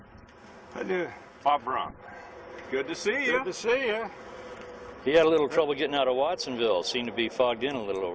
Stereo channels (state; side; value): identical; both; correlation 1.00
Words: I do. Bob Brahm. good to see you. Good to see you. He had a little trouble getting out of Watsonville. Seemed to be fogged in a little